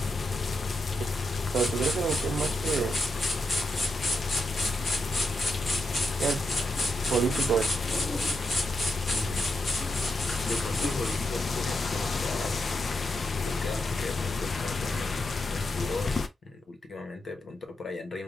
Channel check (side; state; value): both; normal; correlation 0.84